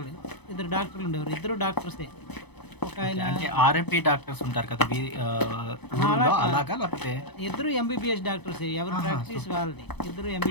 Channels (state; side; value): late; right; 0.99 ms